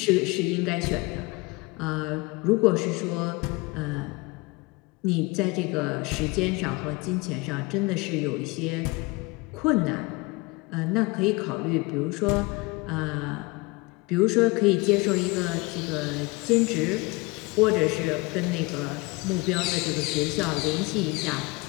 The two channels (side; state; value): right; quieter; 25.0 dB